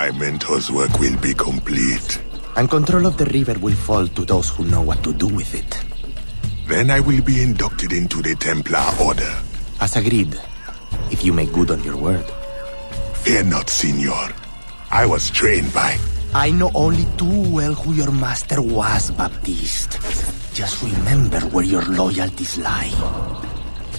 mentor's work will be complete. And control of the river will fall to those who know what to do with it. Then I will be inducted into the Templar Order. As agreed, if you make good on your word. Fear not, Signor. I was trained by... I know only too well who your master was, Baptiste. Just remember where your loyalties lie.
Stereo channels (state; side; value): inverted; both; correlation -1.00